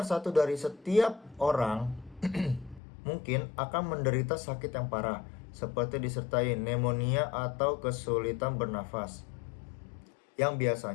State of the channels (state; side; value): drops out; right; at 2.8 s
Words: 1 dari setiap orang mungkin akan menderita sakit yang parah, seperti disertai pneumonia atau kesulitan bernafas, yang